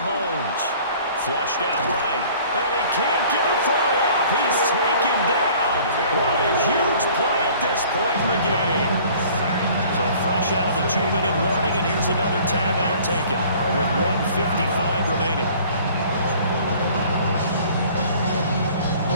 Flushed out right. And he can't get a throw off. He's taken down. What a huge play at this point in the game. So fresh out of the 2-minute warning, and here's another timeout taken with 1:55 remaining.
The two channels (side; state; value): both; inverted; correlation -0.51